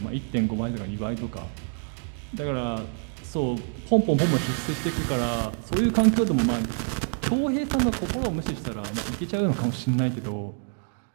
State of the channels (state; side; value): silent; left; 56 dB below the other